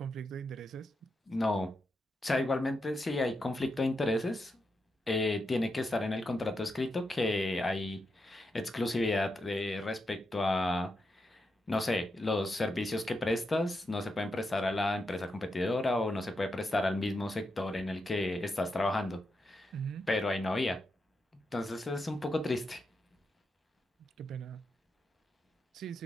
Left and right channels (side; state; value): both; normal; correlation 0.85